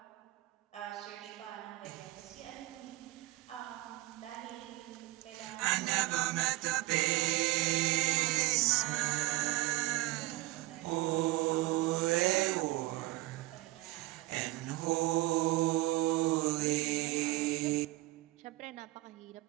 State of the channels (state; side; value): quieter; left; 18.8 dB